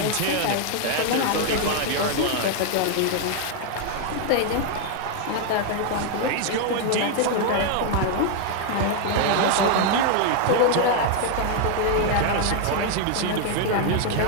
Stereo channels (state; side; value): different; both; correlation 0.00